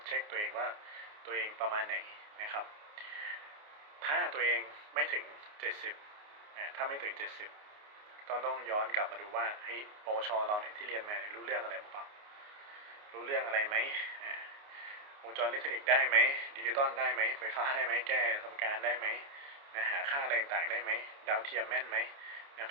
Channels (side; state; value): left; late; 29 ms